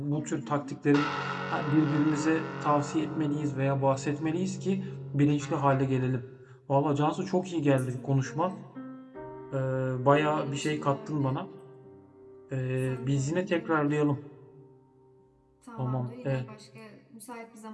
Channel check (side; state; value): both; identical; correlation 1.00